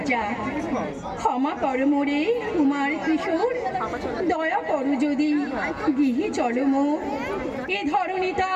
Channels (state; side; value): identical; both; correlation 1.00